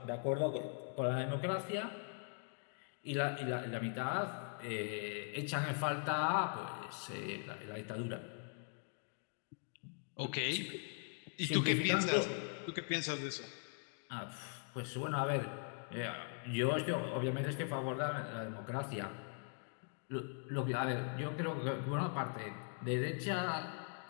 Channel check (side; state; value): right; silent; 50 dB below the other